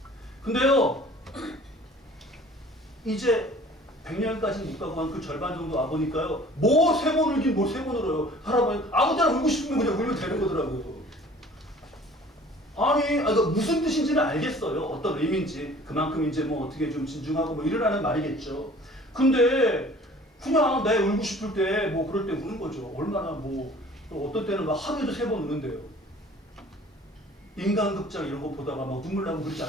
근데요 이제 100년까지는 못 가고 한 그 절반 정도 와보니까요 뭐 3번 울긴 뭐 3번 울어요. 할아버지 아무 때나 울고 싶으면 그냥 울면 되는 거더라고요. 아니 무슨 뜻인지는 알겠어요. 어떤 의미인지 그만큼 이제 뭐 어떻게 좀 진중하고 뭐 이러라는 말이겠죠. 근데 그냥 내 울고 싶을 때 뭐 그럴 때 우는 거죠. 얼마나 뭐 어떤 때는 막 하루에도 3번 우는데요. 인간극장 이런 거 보다가 막 눈물 나고 그러지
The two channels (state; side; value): normal; both; correlation 0.49